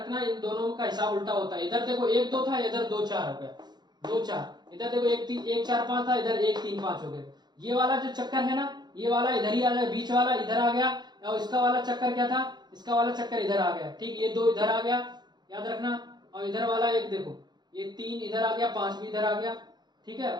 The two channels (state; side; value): late; left; 0.21 ms